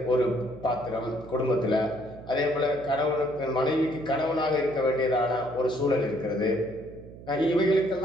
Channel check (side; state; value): right; noise; hum, 17 dB below the sound